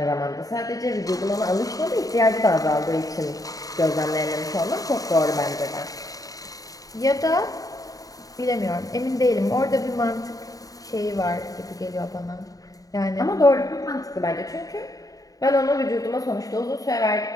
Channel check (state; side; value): late; right; 0.17 ms